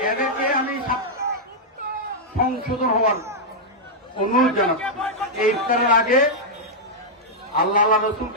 এদেরকে আমি সংশোধন হওয়ার অনুরোধ জানাচ্ছি। এই ইফতারের আগে আল্লাহ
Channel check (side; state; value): both; normal; correlation -0.06